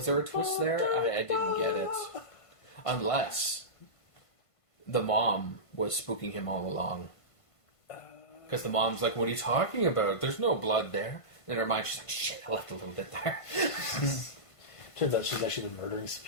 there a twist there? I didn't get it. Unless the mom was spooking him all along. Because the mom's like, what are you talking about? There's no blood there. In her mind, she's like, shit, I left a little bit there. Turns out she's actually been murdering some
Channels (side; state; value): right; late; 1.5 ms